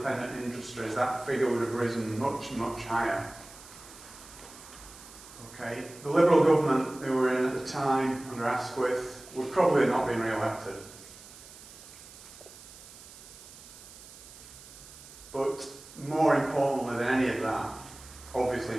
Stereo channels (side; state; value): right; noise; hiss, 18 dB below the sound